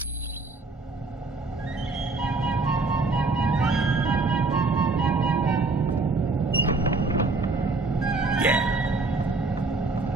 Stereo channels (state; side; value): quieter; left; 3.6 dB